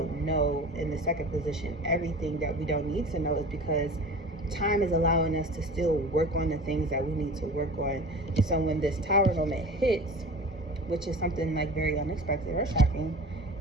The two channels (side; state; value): both; normal; correlation 0.37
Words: know in the second position everything that we don't need to know is because time is allowing us to still work on the things that we need to work on. So when this Tower moment hits, which is something like very unexpected or shocking,